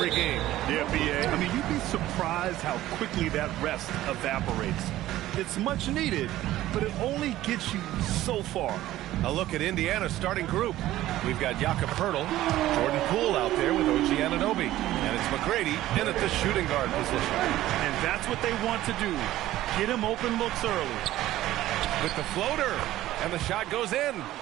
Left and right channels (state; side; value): quieter; left; 14.8 dB